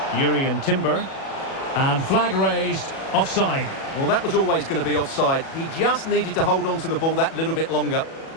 Yuri and Timber. And flag raised, offside. Well, that was always going to be offside. He just needed to hold on to the ball that little bit longer.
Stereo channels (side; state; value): right; late; 37 ms